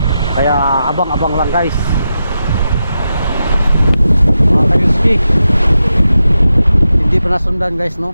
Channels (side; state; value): both; inverted; correlation -0.88